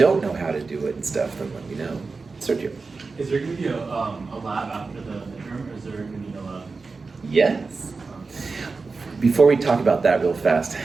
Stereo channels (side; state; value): left; quieter; 4.2 dB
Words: know how to do it and stuff, then let me know. Sergio. Is there going to be a lab after the midterm, or is there going to be a lab? Yes. Before we talk about that real fast,